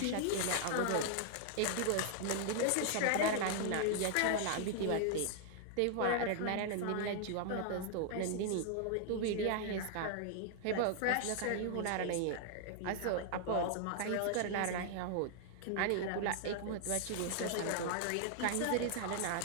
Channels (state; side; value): different; both; correlation 0.00